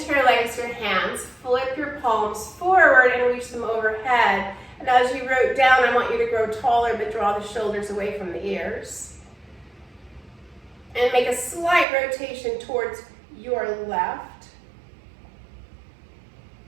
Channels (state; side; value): drops out; left; at 11.9 s